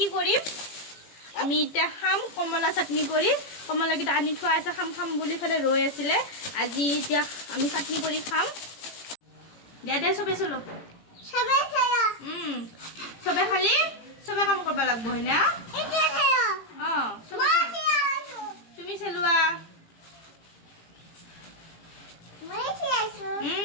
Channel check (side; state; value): right; late; 18 ms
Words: কৰিম আমি এটা খাম কমলা চাটনি কৰি কমলা কিটা আনি থোৱা আছে খাম খাম বুলি ফেলে ৰৈ আছিল আজি এতিয়া আমি চাটনি কৰি খাম দে দে সবে চলো সবে চলো সবে খালি সবে কাম কৰিব লাগিব হয়না এটা খাও সবে তুমি চলোৱা মই চাইছো